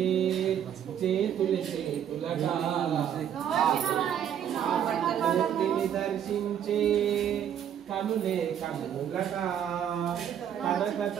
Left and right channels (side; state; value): left; quieter; 9.4 dB